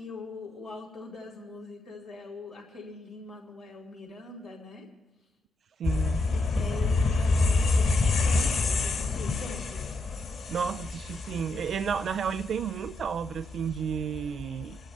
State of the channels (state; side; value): normal; both; correlation 0.80